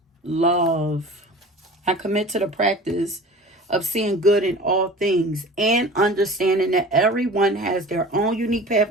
Love. I commit to the practice of seeing good in all things and understanding that everyone has their own unique path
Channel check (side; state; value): both; normal; correlation 0.39